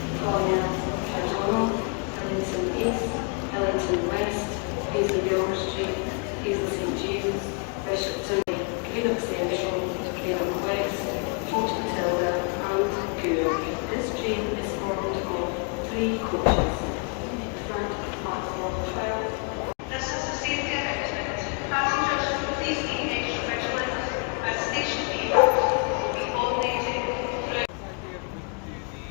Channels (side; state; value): right; quieter; 37.3 dB